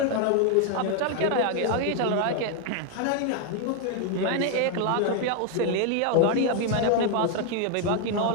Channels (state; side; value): different; both; correlation 0.00